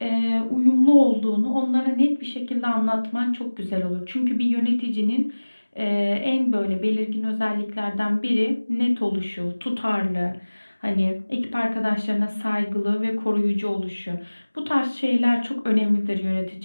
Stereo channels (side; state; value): both; inverted; correlation -1.00